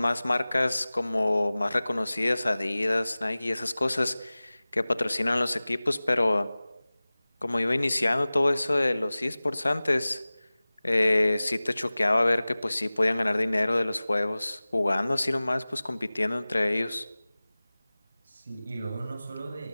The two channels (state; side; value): inverted; both; correlation -0.99